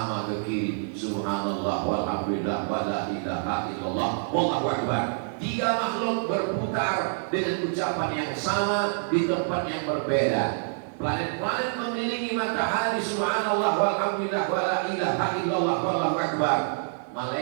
ke kiri subhanallah walhamdulillah wa la ilaha illallah wallahu akbar. Tiga makhluk berputar dengan ucapan yang sama di tempat yang berbeda. Planet-planet mengelilingi matahari subhanallah walhamdulillah wa la ilaha illallah wallahu akbar.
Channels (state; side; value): silent; left; 60 dB below the other